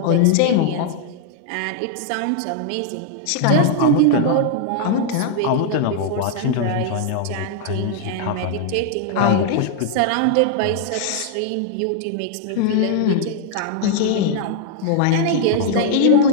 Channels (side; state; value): both; different; correlation 0.00